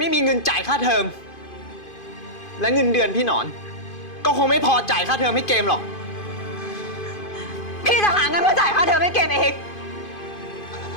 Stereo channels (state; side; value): late; right; 2.5 ms